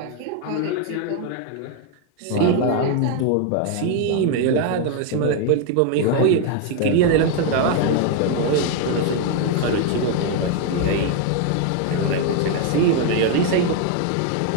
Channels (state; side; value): different; both; correlation 0.01